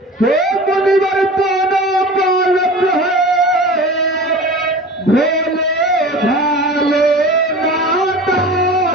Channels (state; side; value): normal; both; correlation 0.37